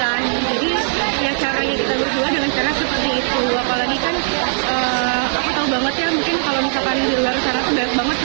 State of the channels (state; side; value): silent; left; digital silence